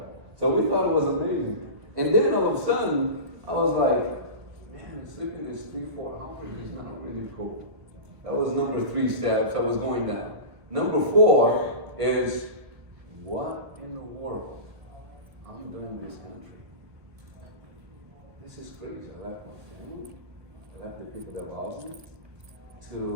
So we thought it was amazing. And then all of a sudden, I was like, man, sleeping this 3-4 hours is not really cool. That was number 3 steps. I was going down. Number 4 is, what in the world I'm doing in this country? This is crazy. I left my family. I left the people that love me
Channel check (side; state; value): left; late; 1.6 ms